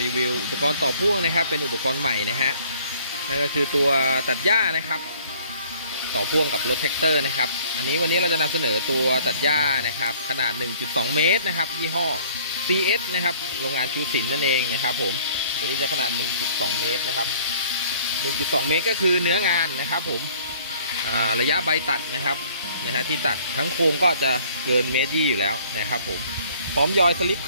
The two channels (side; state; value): both; inverted; correlation -0.56